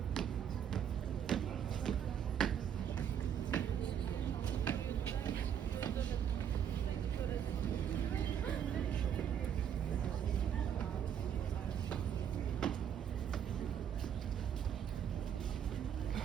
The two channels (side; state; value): left; quieter; 8.8 dB